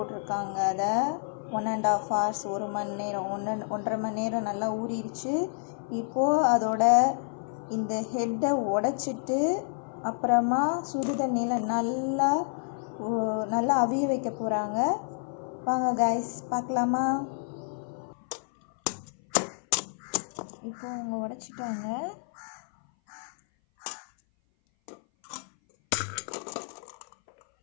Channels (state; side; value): silent; right; 57 dB below the other